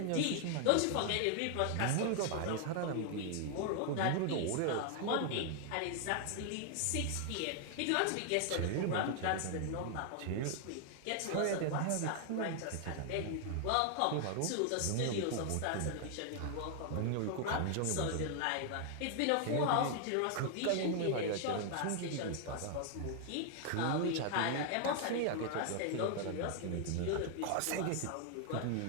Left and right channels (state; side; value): different; both; correlation 0.00